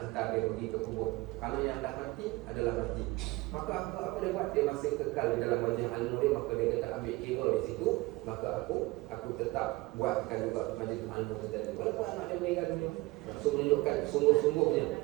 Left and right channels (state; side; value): quieter; left; 21.0 dB